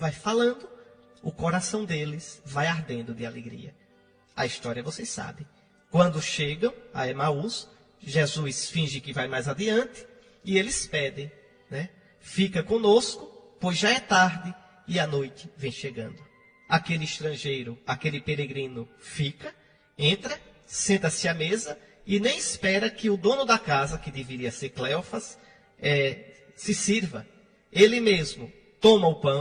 falando, o coração deles vai ardendo de alegria. A história vocês sabem. Quando chegam a Emaús, Jesus finge que vai mais adiante e eles pedem, né? Fica conosco, pois já é tarde e a noite vem chegando. Aquele estrangeiro, aquele peregrino fica, entra, senta-se à mesa e nem espera que o dono da casa, que deveria ser Cleófas, se sirva. Ele mesmo toma o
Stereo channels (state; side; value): identical; both; correlation 1.00